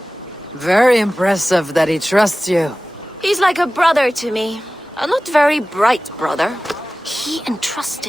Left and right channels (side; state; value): both; normal; correlation 0.97